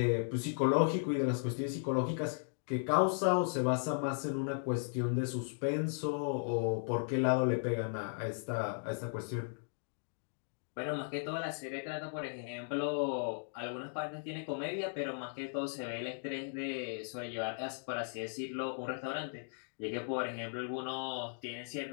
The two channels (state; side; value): silent; right; digital silence